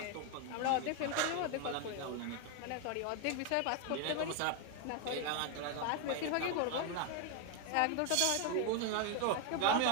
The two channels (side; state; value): both; different; correlation 0.01